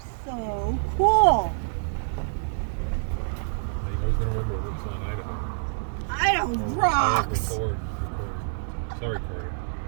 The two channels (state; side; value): silent; left; digital silence